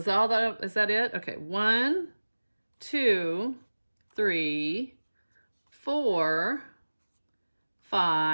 that it? Okay, 1, 2, 3, 4,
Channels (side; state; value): both; inverted; correlation -1.00